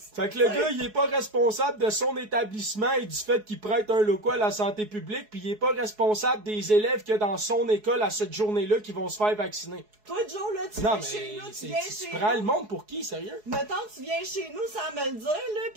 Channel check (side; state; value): left; late; 4.7 ms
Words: Fait que le gars, il est pas responsable de son établissement et du fait qu'il prête un local à la santé publique, puis il est pas responsable des élèves qu'il y a dans son école à cette journée-là qui vont se faire vacciner. Toi, Joe, là, tu Non, viens chez nous, tu mais viens tu chez prends nous. le monde pour qui, sérieux? Mettons, tu viens chez nous sans me le dire, là,